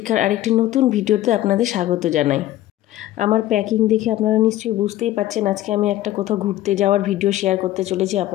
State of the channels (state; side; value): quieter; right; 14.4 dB